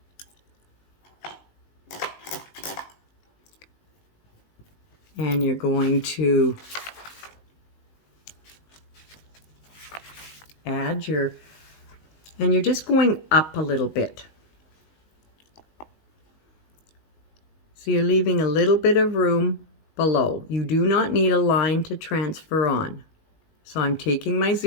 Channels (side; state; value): right; late; 19 ms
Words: and you're going to add your, and you're just going up a little bit. So you're leaving a little bit of room below. You do not need a line to transfer on. So I'm taking my